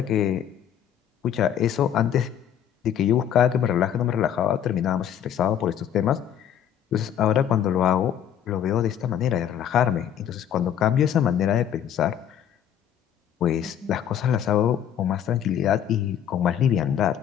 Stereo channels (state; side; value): quieter; right; 9.6 dB